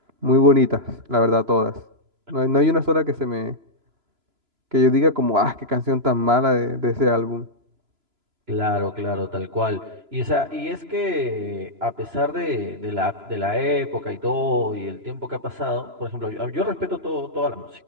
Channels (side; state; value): left; late; 3.0 ms